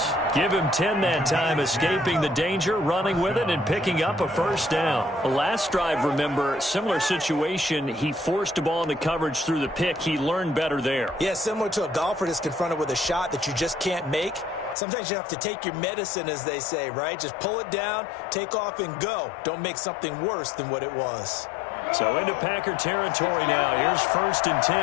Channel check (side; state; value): right; drops out; at 14.8 s